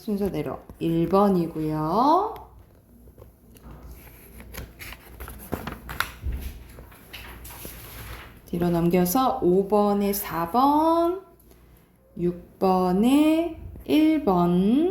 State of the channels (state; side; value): identical; both; correlation 1.00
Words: 1번이고요. 뒤로 넘겨서 5번에 4번, 6번에